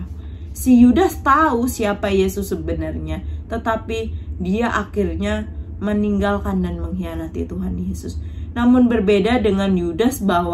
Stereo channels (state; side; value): identical; both; correlation 1.00